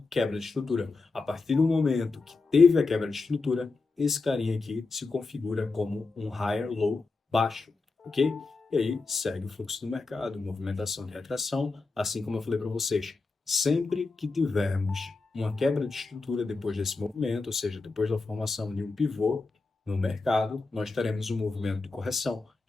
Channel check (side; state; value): right; quieter; 3.9 dB